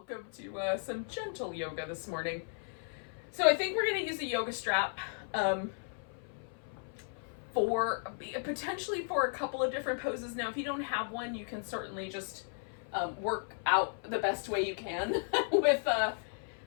welcome to some gentle yoga this morning. So I think we're going to use a yoga strap potentially for a couple of different poses. Now, if you don't have one, you can certainly just work out the best way you can with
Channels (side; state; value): right; silent; 54 dB below the other